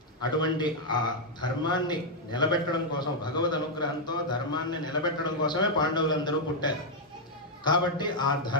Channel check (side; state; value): both; normal; correlation -0.02